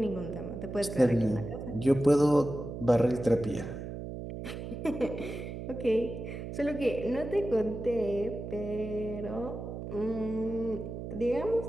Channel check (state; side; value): noise; right; hum, 8 dB below the sound